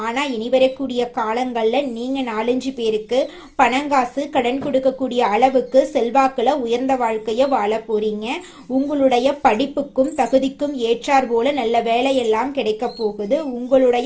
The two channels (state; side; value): identical; both; correlation 1.00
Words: ஆனா இனி வரக்கூடிய காலங்கள்ல நீங்க 4-5 பேருக்கு பணம் காசு கடன் கொடுக்கக்கூடிய அளவுக்கு செல்வாக்குல உயர்ந்த வாழ்க்கைய வாழ போறீங்க. உங்களுடைய படிப்புக்கும் தகுதிக்கும் ஏற்றார் போல நல்ல வேலையெல்லாம் கிடைக்க போகுது.